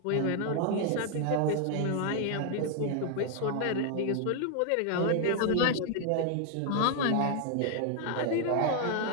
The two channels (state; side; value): different; both; correlation 0.00